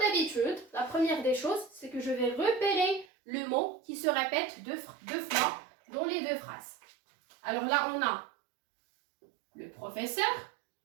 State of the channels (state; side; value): drops out; left; at 3.1 s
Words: la première des choses, c'est que je vais repérer le mot qui se répète deux fois dans les deux phrases. Alors là, on a le professeur